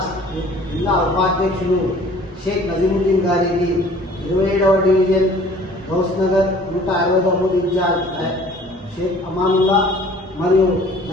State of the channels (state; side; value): normal; both; correlation 0.51